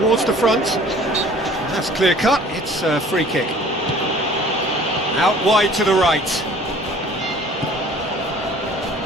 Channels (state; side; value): normal; both; correlation 0.50